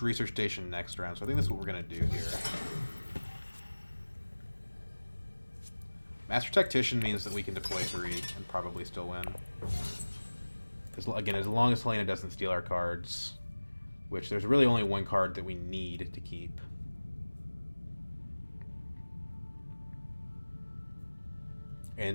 research station next round. So I think that's what we're going to do here. Master Tactician means that we can deploy 3 and probably still win. Again, as long as Helena doesn't steal our cards. Which, there's really only one card that we need to keep.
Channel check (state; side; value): inverted; both; correlation -1.00